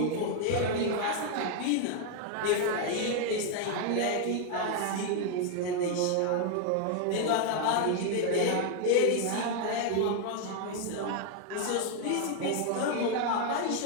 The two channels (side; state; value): both; different; correlation 0.00